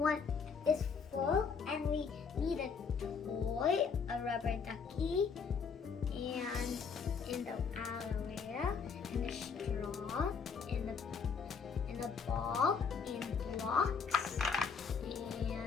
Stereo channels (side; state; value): right; quieter; 5.8 dB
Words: is full and we need a toy, a rubber ducky, and in the aloe vera, and a straw, and a ball, and blocks,